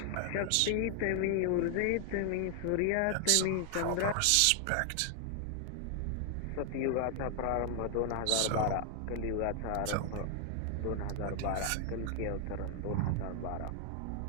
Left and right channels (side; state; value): both; different; correlation 0.00